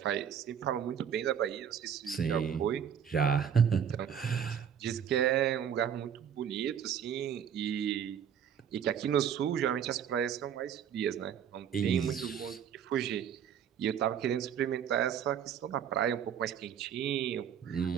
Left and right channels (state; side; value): quieter; left; 8.4 dB